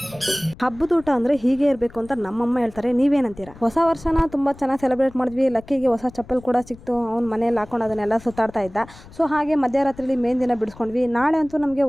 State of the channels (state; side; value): noise; left; rumble, 21 dB below the sound